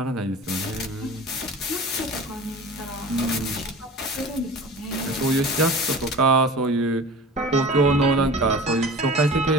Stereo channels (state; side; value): normal; both; correlation 0.38